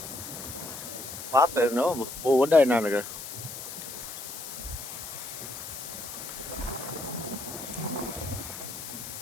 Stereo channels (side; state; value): left; noise; hiss, 9 dB below the sound